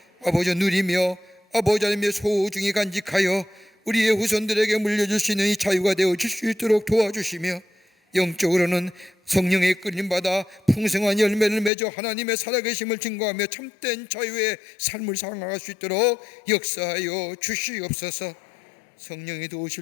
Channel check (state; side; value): drops out; right; at 11.7 s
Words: 아버지 누리며 아버지 하나님의 소중히 간직하여 우리의 후손들에게 물려줄 수 있는 이 자유가 되어질 수 있도록 도와주시며, 영적으로는 성령의 끌림받아 풍성한 열매를 맺어 하나님의 살아계심을 증거하며 참된 자유의 삶을 살아갈 수 있도록 역사하여 주시옵소서. 성령이